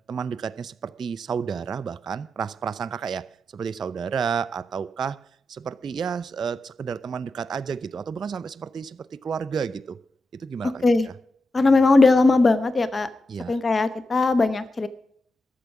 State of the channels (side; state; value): both; normal; correlation 0.88